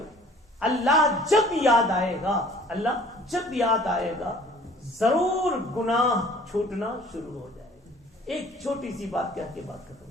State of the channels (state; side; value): normal; both; correlation 0.52